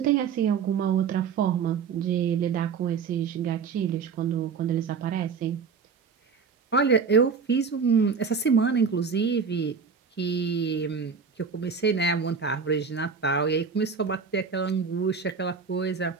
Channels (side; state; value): left; quieter; 5.8 dB